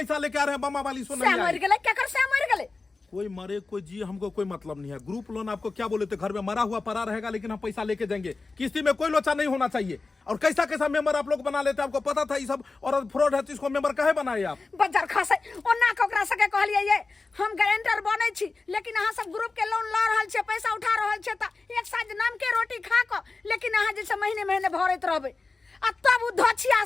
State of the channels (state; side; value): quieter; right; 3.8 dB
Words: लेके आ रहे हैं, बम्मा वाली सुन मर गेले, क्या कर से मर गेले? कोई मरे कोई जी, हमको कोई मतलब नहीं है। ग्रुप लोन आपको क्या बोले थे, घर में मरा हुआ पड़ा रहेगा, लेकिन हम पैसा लेके जाएंगे। किस्ती में कोई लोचा नहीं होना चाहिए। और कैसा मेंबर आप लोग बना लेते हैं, आपको पता था ये सब और फ्रॉड है, तो इसको मेंबर काहे बनाए आप? बजार खासे ओना कोकरा सके कहलिए ये हम गारंटर बनै छी, लेकिन अहाँ सब ग्रुप के लोन ल रहल छे, पैसा उठा रहल छे, त एक साथ नाम के रोटी खा क, लेकिन अहाँ जे महीने भरैत रहबै। आ तब उ धछिया